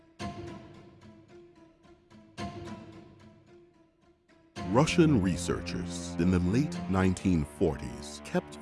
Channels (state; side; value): identical; both; correlation 1.00